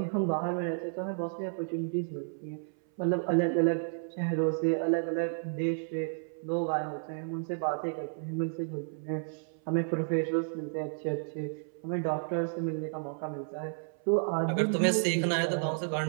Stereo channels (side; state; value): left; silent; 57 dB below the other